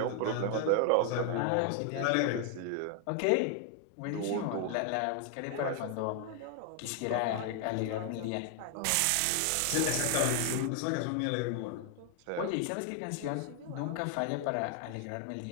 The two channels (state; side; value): different; both; correlation 0.00